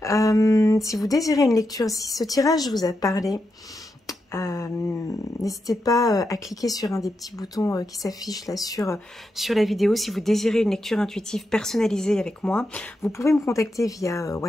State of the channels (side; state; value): both; normal; correlation 0.86